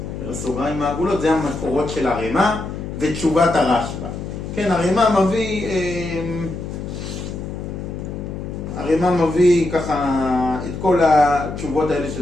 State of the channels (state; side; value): noise; left; hum, 7 dB below the sound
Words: בסוגריים העגולות, זה המקורות של הרמה ותשובת הרשב"א. כן, הרמה מביא ככה את כל התשובות האלה